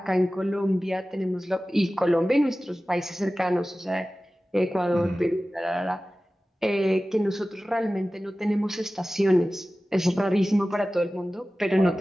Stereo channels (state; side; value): normal; both; correlation 0.96